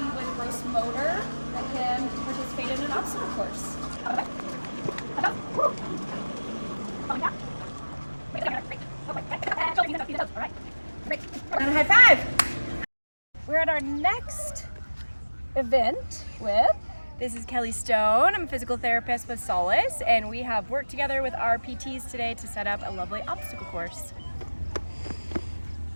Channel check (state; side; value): inverted; both; correlation -1.00